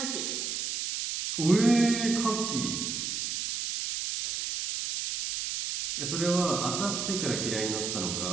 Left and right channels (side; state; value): right; noise; hiss, 2 dB below the sound